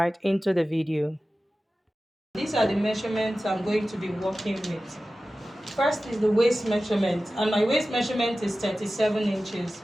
into the video. These are the measurements I'm going to be working with. First is the waist measurement, and my waist measurement is 37 inches.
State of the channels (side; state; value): both; normal; correlation 0.95